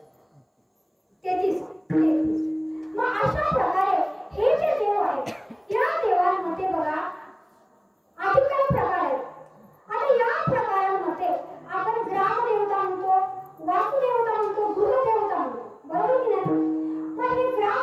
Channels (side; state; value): both; identical; correlation 1.00